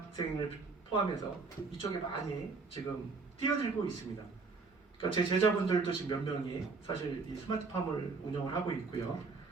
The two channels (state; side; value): quieter; left; 4.3 dB